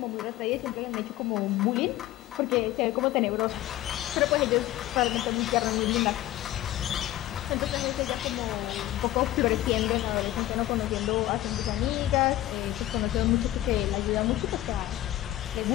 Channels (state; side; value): quieter; right; 14.6 dB